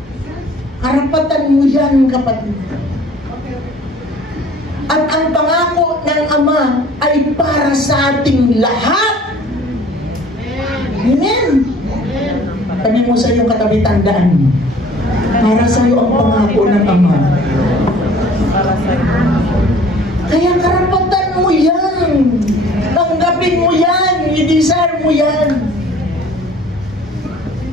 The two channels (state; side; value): normal; both; correlation 0.51